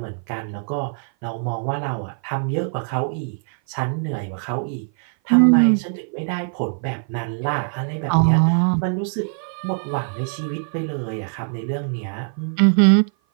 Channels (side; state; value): left; silent; 56 dB below the other